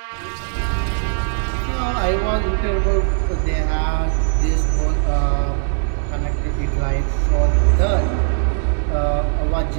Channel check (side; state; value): left; silent; 65 dB below the other